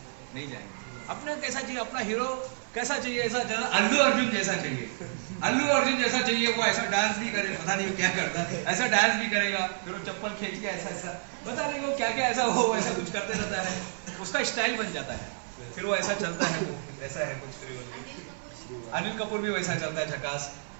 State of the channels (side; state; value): left; silent; 58 dB below the other